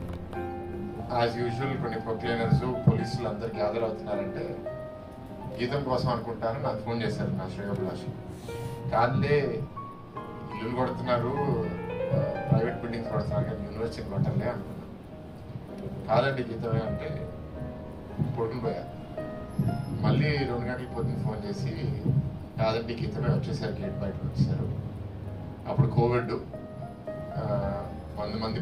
యాజ్ యూజువల్ కొన్ని ప్రొక్లైనర్స్, పోలీసులు అందరు గ్యాదర్ అవుతున్నారంటే గీతం కోసం అనుకుంటాను నాకు ఫోన్ చేశారు నా శ్రేయోభిలాష్. కాదులే, ఇల్లు కొడుతున్నారు, ప్రైవేట్ బిల్డింగ్స్ కొడుతున్నారు కానీ యూనివర్సిటీని కొట్టాలే అనుకున్నాను. కాదండి గీతమే అంటే పడుకుని పోయారు. మళ్ళీ 2 గంటల పొద్దున్న ఫోన్ చేసి కాదండి గీతమే వచ్చేసారు, గేట్ బయటకు వచ్చేసారు. అప్పుడు కోవిడ్, 100 మంది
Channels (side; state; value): both; identical; correlation 1.00